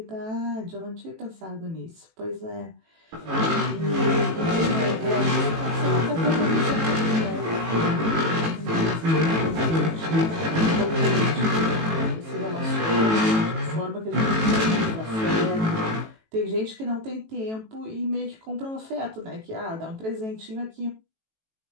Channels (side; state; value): left; late; 18 ms